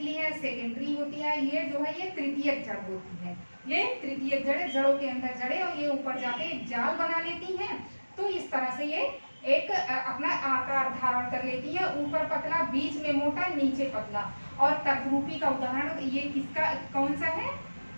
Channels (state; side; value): inverted; both; correlation -1.00